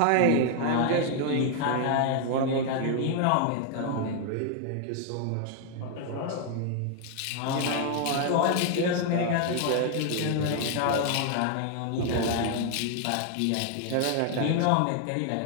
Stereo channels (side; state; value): both; different; correlation 0.00